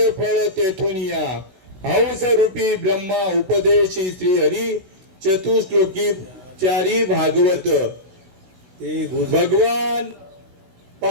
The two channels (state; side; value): late; left; 16 ms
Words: फळ तेथून या. हंस रूपी ब्रह्मा उपदेशी श्री हरी चतुश्लोकी चारी भागवत. ते भगवान